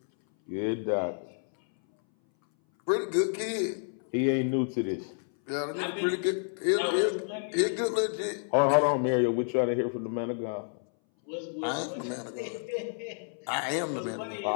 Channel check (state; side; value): silent; right; 58 dB below the other